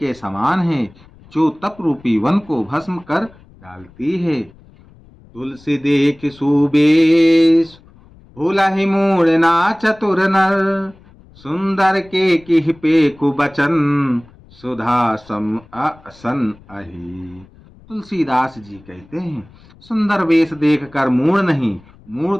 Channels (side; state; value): left; noise; rumble, 26 dB below the sound